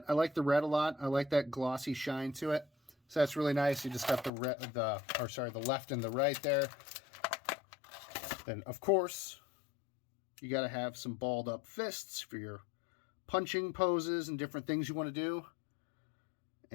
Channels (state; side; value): drops out; right; at 4.3 s